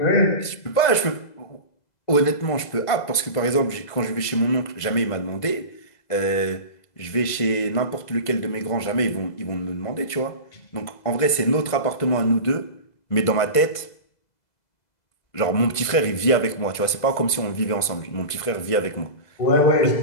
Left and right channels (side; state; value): right; late; 2.0 ms